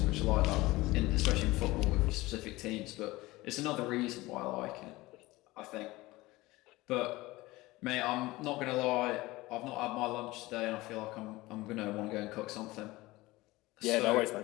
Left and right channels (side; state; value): right; quieter; 19.8 dB